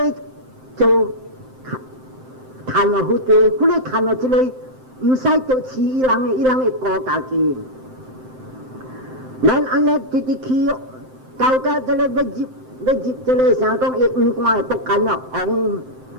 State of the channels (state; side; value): late; left; 7.7 ms